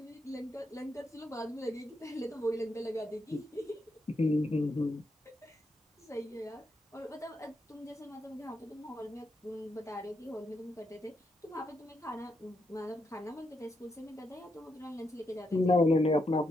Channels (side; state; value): both; normal; correlation 0.81